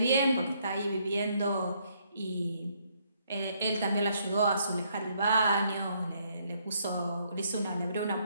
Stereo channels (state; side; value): inverted; both; correlation -0.70